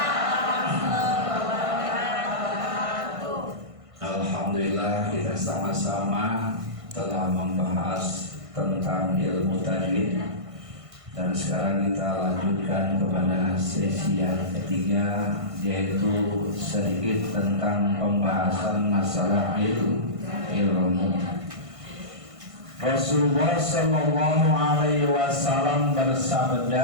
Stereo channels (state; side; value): late; left; 1.5 ms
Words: Alhamdulillah kita sama-sama telah membahas tentang ilmu tajwid, dan sekarang kita lanjutkan kepada sesi yang ketiga, yaitu sedikit tentang pembahasan masalah ilmu. Rasulullah Sallallahu Alaihi Wasallam